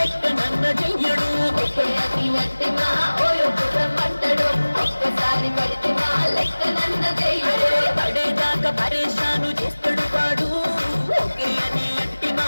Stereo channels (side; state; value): both; inverted; correlation -1.00